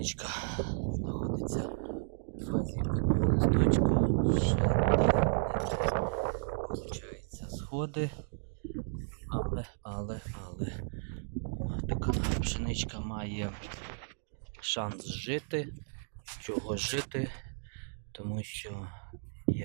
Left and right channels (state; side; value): silent; left; digital silence